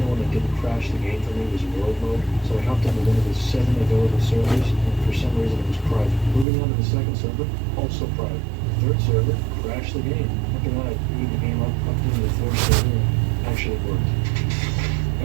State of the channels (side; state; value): left; drops out; at 6.5 s